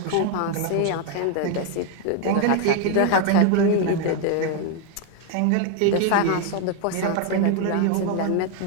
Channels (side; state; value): both; different; correlation 0.01